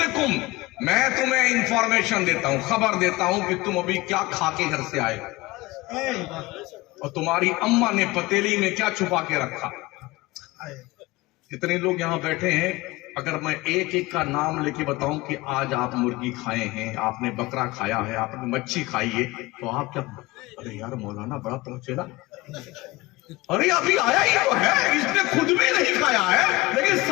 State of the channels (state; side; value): quieter; right; 21.0 dB